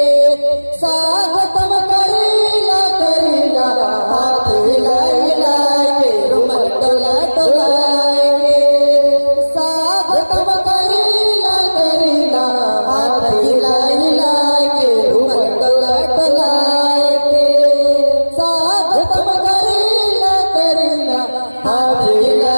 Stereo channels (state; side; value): inverted; both; correlation -1.00